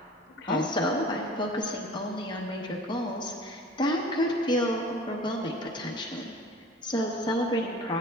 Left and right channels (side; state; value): both; normal; correlation 0.44